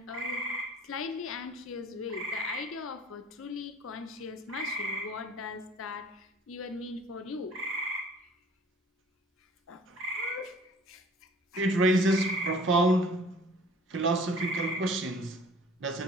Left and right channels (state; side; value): normal; both; correlation 0.50